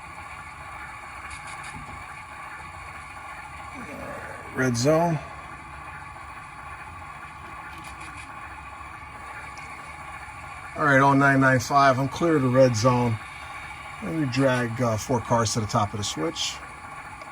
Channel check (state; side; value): identical; both; correlation 1.00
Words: Red zone. All right, on 995, I'm clear of the red zone. Let me drag 4 cars to the top of the switch.